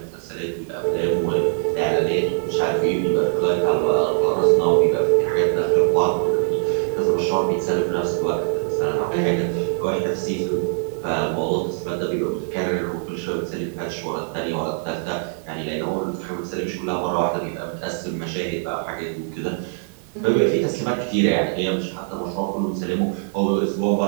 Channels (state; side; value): silent; left; 59 dB below the other